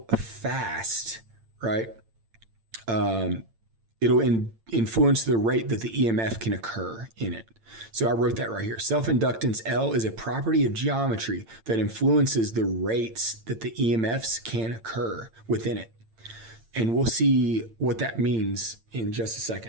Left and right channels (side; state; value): left; late; 8.8 ms